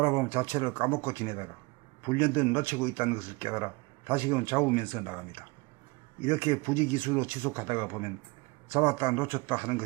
자체를 까먹고 지내다가 불현듯 놓치고 있다는 것을 깨달아 다시금 잡으면서 나갑니다. 이렇게 부지기수로 지속하다가 보면 잡았다 놓쳤다 하는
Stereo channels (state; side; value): quieter; left; 25.6 dB